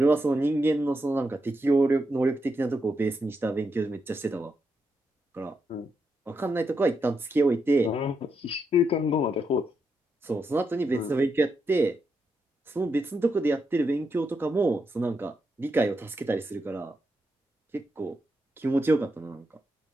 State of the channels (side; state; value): both; normal; correlation 0.83